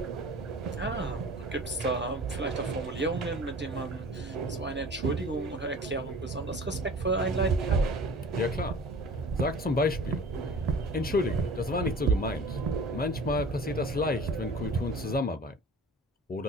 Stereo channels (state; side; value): normal; both; correlation 0.42